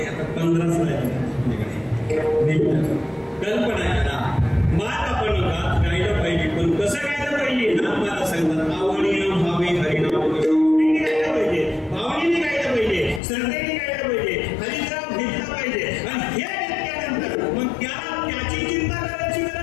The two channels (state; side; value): drops out; right; at 13.2 s